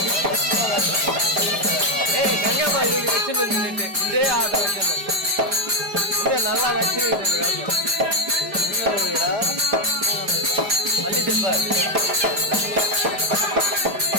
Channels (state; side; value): late; left; 4.9 ms